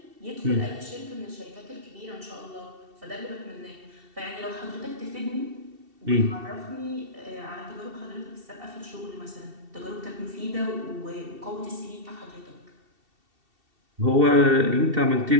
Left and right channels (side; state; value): left; late; 2.7 ms